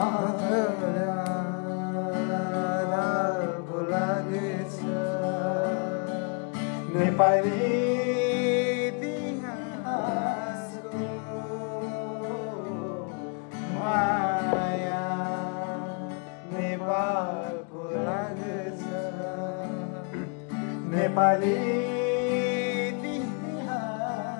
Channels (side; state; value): right; quieter; 37.5 dB